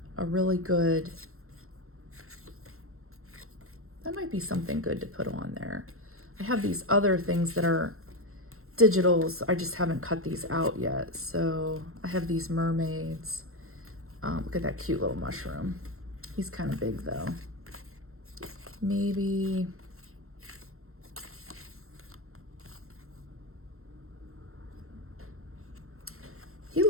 a really good, that might be something good to put on there. I have these other things that are digitals. I just haven't cut these out yet. So I have these mermaids. Look at that cute little mushroom. He's kind of big though. Maybe he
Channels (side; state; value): left; late; 0.62 ms